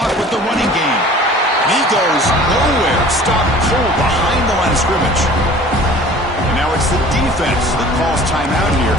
with the running game. He goes nowhere. Stopped cold behind the line of scrimmage. And now it's the defense that calls timeout here,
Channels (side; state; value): both; normal; correlation 0.46